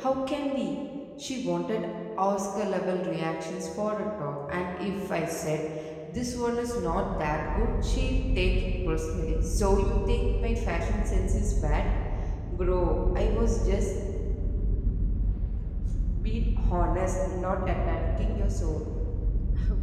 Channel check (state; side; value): identical; both; correlation 1.00